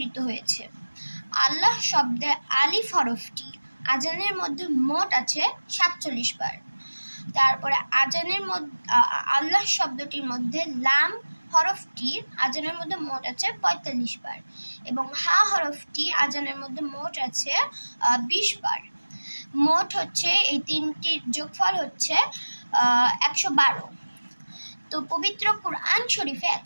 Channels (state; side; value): inverted; both; correlation -1.00